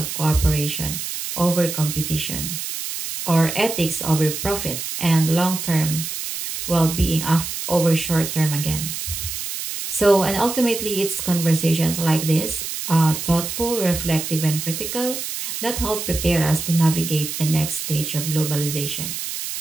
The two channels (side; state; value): right; noise; hiss, 5 dB below the sound